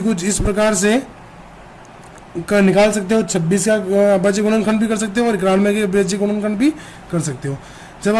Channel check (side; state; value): both; identical; correlation 1.00